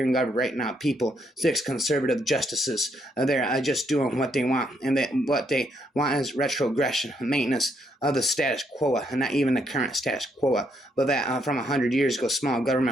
governed right now. People, six conservative justices, they're just doing what they want, and what they want is retrogression, maintenance of the status quo, and not even the current status quo, but that from 100 years ago, small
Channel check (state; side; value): normal; both; correlation 0.74